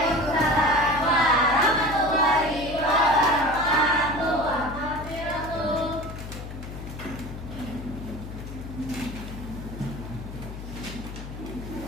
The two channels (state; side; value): noise; left; hum, 10 dB below the sound